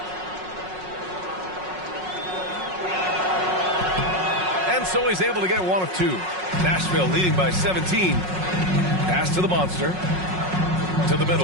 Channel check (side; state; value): left; late; 5.5 ms